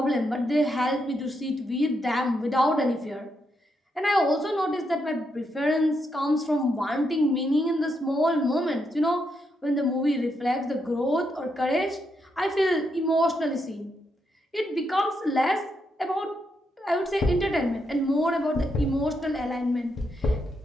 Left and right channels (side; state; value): both; normal; correlation 0.81